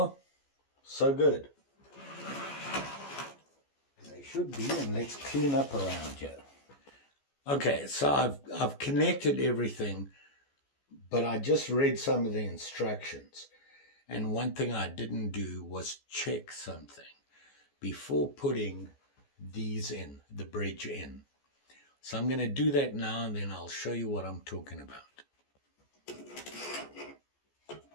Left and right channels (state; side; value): late; right; 14 ms